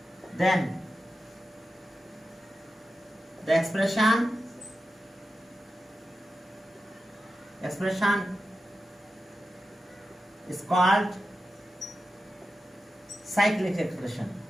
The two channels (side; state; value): both; normal; correlation 0.91